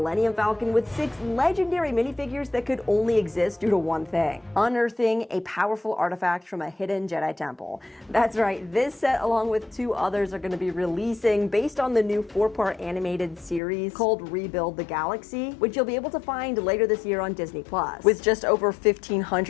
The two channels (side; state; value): right; drops out; at 13.6 s